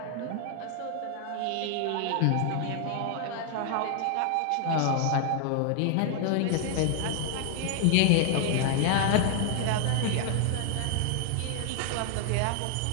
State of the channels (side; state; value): both; different; correlation 0.00